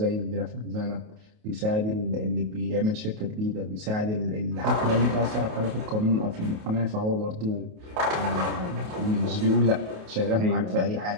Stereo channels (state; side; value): late; left; 28 ms